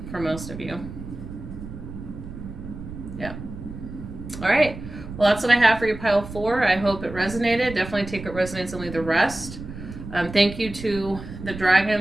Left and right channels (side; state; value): right; noise; rumble, 11 dB below the sound